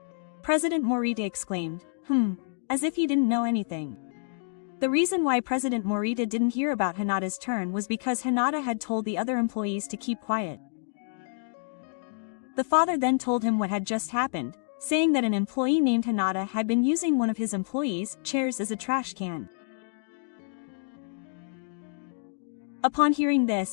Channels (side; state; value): right; silent; digital silence